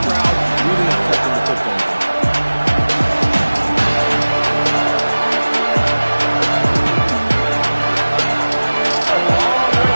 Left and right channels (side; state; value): both; inverted; correlation -1.00